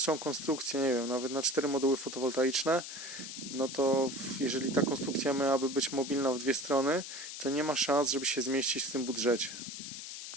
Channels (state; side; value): noise; left; hiss, 9 dB below the sound